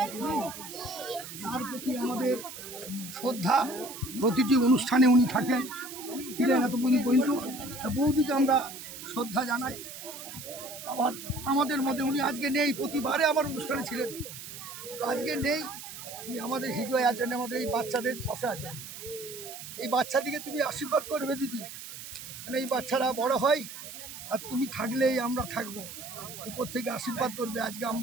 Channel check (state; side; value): noise; right; hiss, 11 dB below the sound